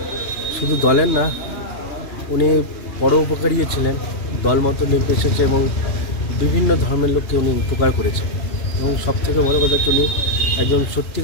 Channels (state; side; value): late; right; 2.9 ms